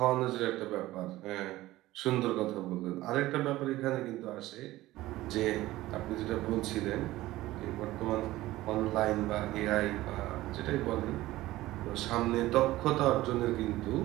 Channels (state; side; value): quieter; left; 16.8 dB